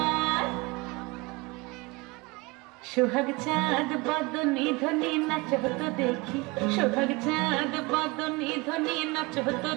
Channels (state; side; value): quieter; left; 24.9 dB